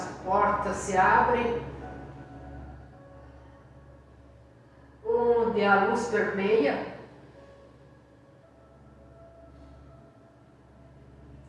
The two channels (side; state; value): both; identical; correlation 1.00